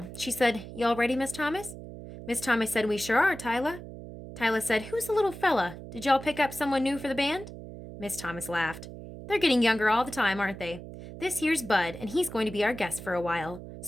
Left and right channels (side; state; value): right; noise; hum, 12 dB below the sound